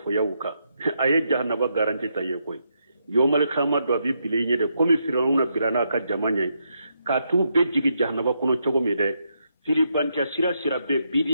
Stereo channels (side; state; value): both; inverted; correlation -0.80